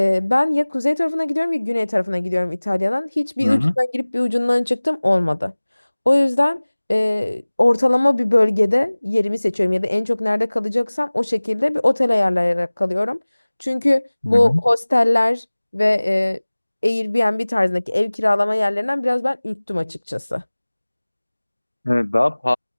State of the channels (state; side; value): inverted; both; correlation -1.00